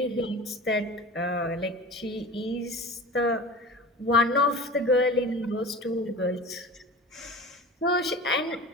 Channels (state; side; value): normal; both; correlation 0.35